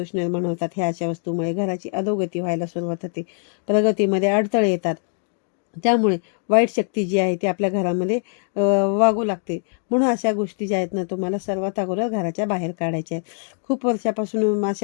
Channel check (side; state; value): right; silent; 55 dB below the other